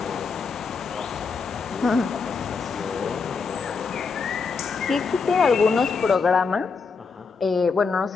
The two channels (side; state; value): right; quieter; 5.0 dB